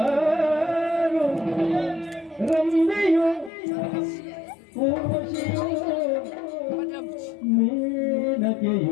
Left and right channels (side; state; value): right; drops out; at 3.5 s